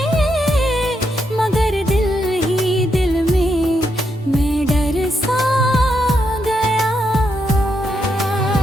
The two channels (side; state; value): both; normal; correlation 0.81